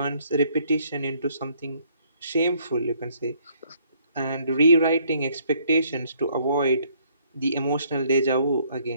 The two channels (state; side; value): inverted; both; correlation -0.65